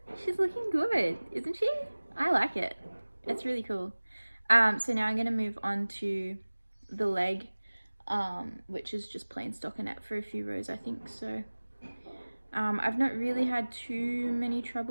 she's looking good, isn't she? I like it. It's really cool. So now I'm going to move on to the leg, which is just plain stockinette for a few rows, I think. So I've not really had too many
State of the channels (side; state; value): both; inverted; correlation -1.00